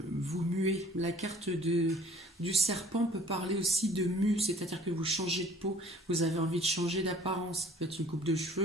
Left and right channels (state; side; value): normal; both; correlation 0.52